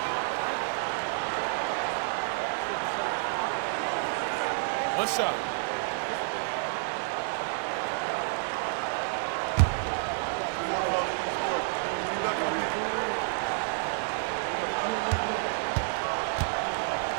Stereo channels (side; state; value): left; silent; digital silence